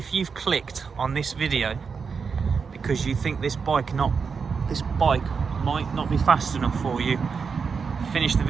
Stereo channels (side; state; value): left; quieter; 5.6 dB